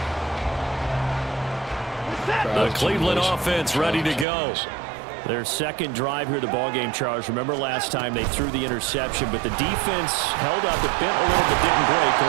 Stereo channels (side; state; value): left; drops out; at 4.2 s